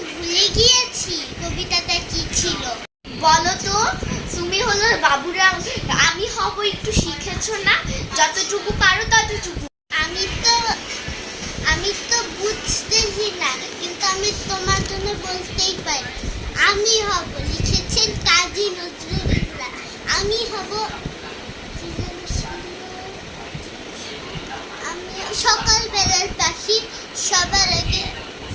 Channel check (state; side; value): identical; both; correlation 1.00